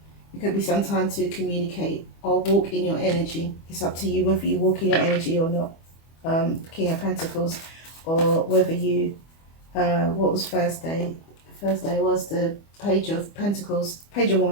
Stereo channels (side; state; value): right; late; 25 ms